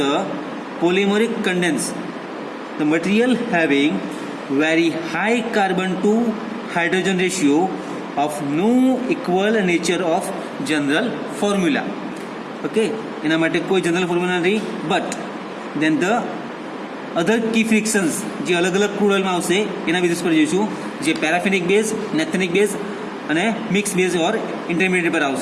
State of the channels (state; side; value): identical; both; correlation 1.00